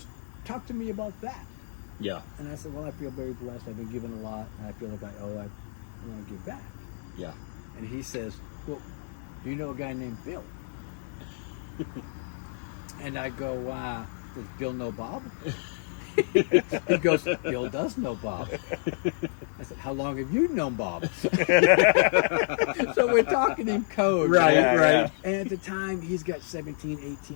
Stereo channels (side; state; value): right; silent; digital silence